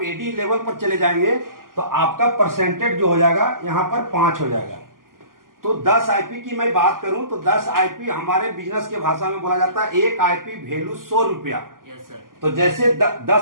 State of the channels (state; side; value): late; left; 0.91 ms